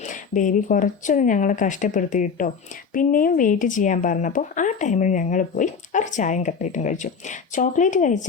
ബേബി കുറച്ചൊന്നും ഞങ്ങളെ കഷ്ടപ്പെടുത്തി കിട്ടോ. പിന്നെയും വെയിറ്റ് ചെയ്യാൻ പറഞ്ഞപ്പോൾ ആ ടൈമിൽ ഞങ്ങൾ പോയി ഒരു ചായയും കട്ട്ലേറ്റും കഴിച്ചു. ചോക്ലേറ്റ്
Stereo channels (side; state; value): right; quieter; 5.9 dB